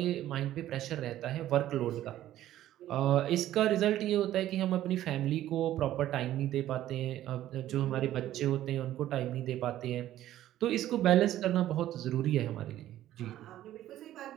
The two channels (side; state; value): left; quieter; 13.2 dB